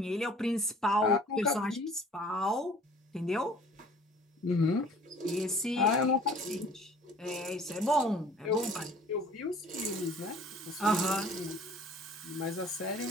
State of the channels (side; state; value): both; normal; correlation 0.50